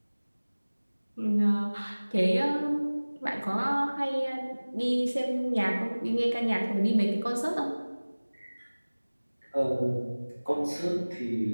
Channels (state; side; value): inverted; both; correlation -1.00